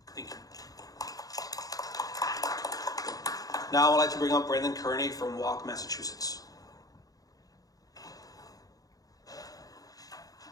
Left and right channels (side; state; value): right; late; 0.18 ms